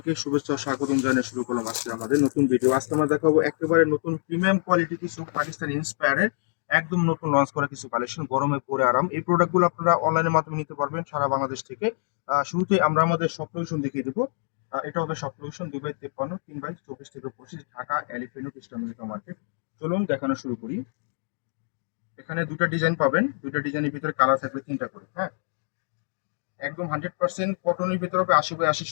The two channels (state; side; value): silent; right; digital silence